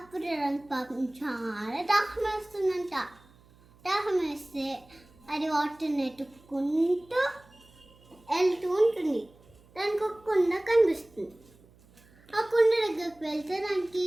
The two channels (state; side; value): noise; right; hum, 28 dB below the sound